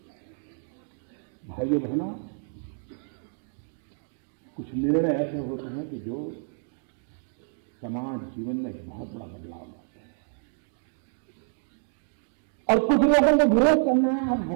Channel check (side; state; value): left; silent; digital silence